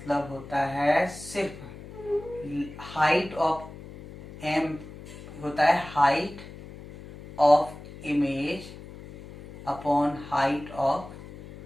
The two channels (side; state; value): left; noise; hum, 15 dB below the sound